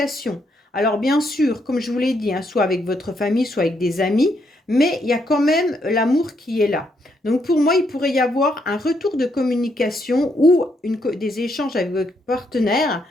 Alors bien sûr, comme je vous l'ai dit, hein, soit avec votre famille, soit avec des amis, mais il y a quand même l'amour qui est là. Donc pour moi, il pourrait y avoir un retour de communication ou des échanges avec votre partenaire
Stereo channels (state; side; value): normal; both; correlation 0.76